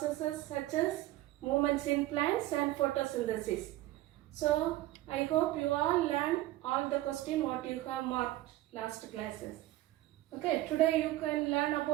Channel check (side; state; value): left; quieter; 16.3 dB